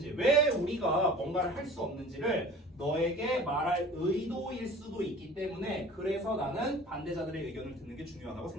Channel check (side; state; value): both; normal; correlation 0.43